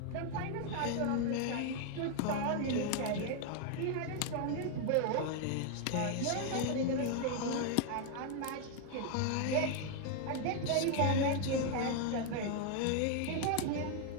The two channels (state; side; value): different; both; correlation 0.01